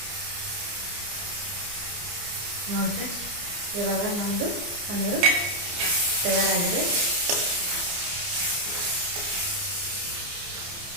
ನೋಡಿ ಫ್ರೆಂಡ್ಸ್, ಇವಾಗ ನಮ್ಮದು ಪನ್ನೀರು ತಯಾರಾಗಿದೆ.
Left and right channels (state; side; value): late; left; 29 ms